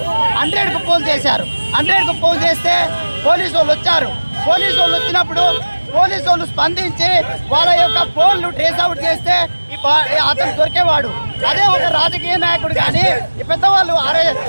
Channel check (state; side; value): inverted; both; correlation -1.00